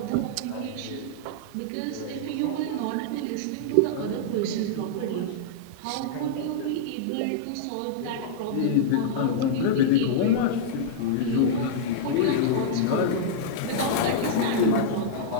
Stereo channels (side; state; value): both; different; correlation -0.02